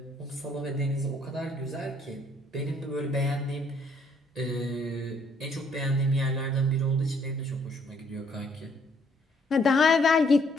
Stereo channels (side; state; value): both; normal; correlation 0.66